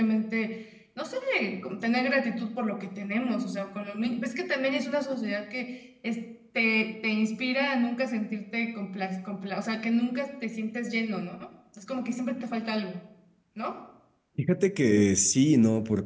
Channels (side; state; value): both; identical; correlation 1.00